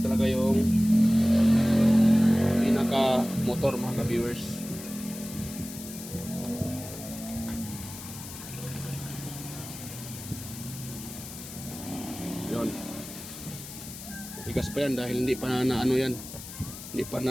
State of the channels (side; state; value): left; noise; hiss, 12 dB below the sound